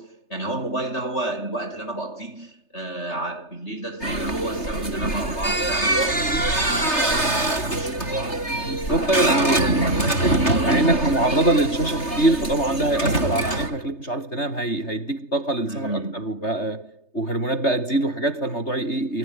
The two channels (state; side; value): late; right; 3.3 ms